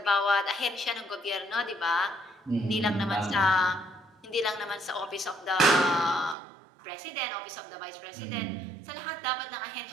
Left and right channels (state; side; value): drops out; left; at 6.4 s